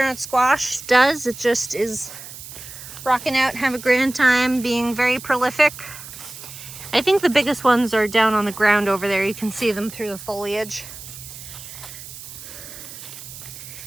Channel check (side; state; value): right; noise; hiss, 14 dB below the sound